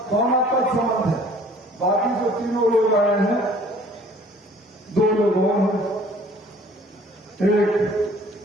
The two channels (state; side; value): normal; both; correlation 0.53